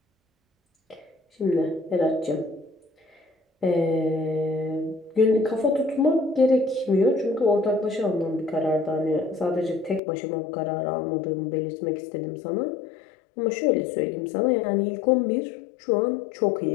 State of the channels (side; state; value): right; drops out; at 10.0 s